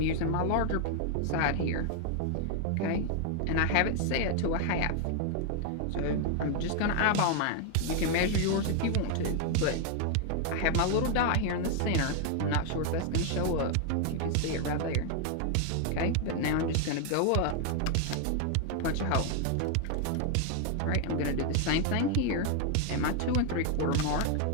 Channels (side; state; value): both; different; correlation 0.00